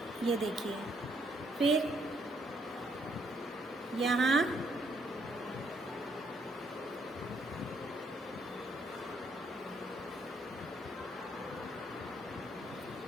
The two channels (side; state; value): both; normal; correlation 0.71